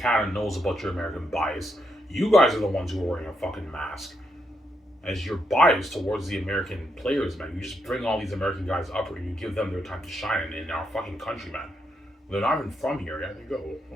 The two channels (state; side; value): normal; both; correlation 0.80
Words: knows about your American bias. You guys are the ones who are wearing a fucking mask. As your bias towards the American players, man. You just bring all these American guys up here and you give them their time to shine in our fucking country, man. They're not even from here. Yeah, they go.